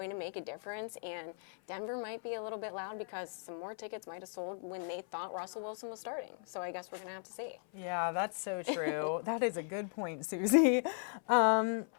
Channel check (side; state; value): right; silent; 53 dB below the other